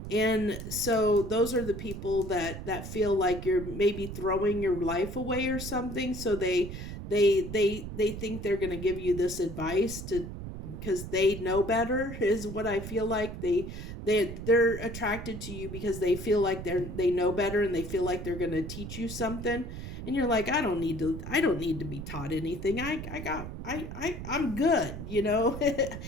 And so those are the people that feel like you're maybe throwing your life away or something. So they think they're going to give you this advice to, because they know better, is what I feel like. They're attracted to you because they feel like they know better, and they feel like they're going to teach you something. And you're like, I don't need to be taught anything. I'm good.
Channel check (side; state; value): right; noise; rumble, 8 dB below the sound